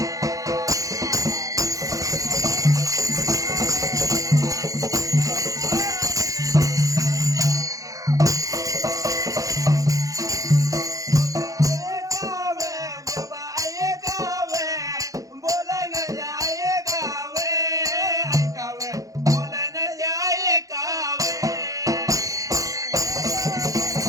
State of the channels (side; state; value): left; late; 0.16 ms